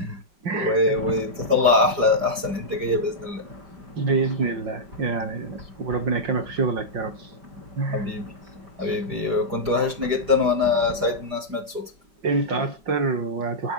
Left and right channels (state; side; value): late; left; 4.9 ms